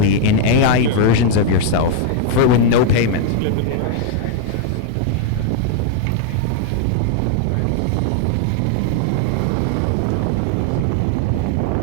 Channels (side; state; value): both; different; correlation 0.00